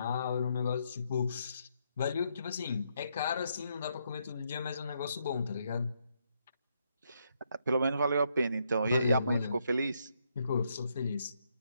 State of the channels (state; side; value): inverted; both; correlation -0.76